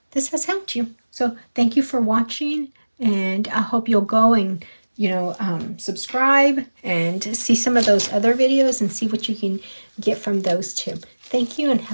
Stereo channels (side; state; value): both; inverted; correlation -1.00